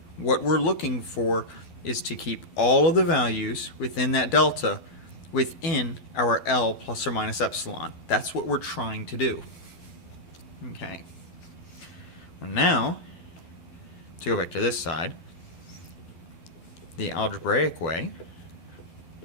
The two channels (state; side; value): late; right; 12 ms